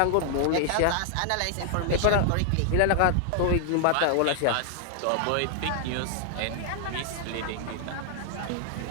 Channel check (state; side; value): different; both; correlation 0.00